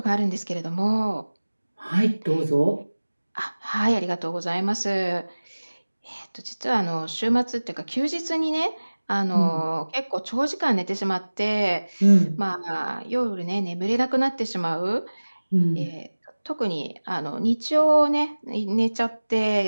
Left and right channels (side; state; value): both; inverted; correlation -1.00